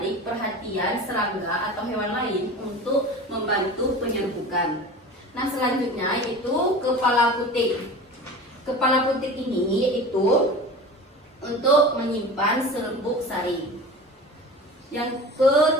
perhatian serangga atau hewan lain untuk membantu penyerbukan. Nah, selanjutnya itu kepala putik. Kepala putik ini itu untuk menyimpan serbuk sari. Yang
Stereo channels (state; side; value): normal; both; correlation 0.35